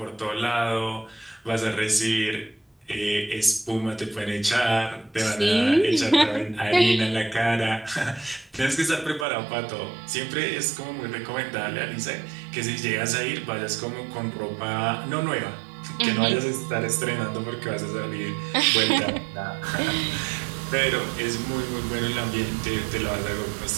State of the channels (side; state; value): left; drops out; at 9.2 s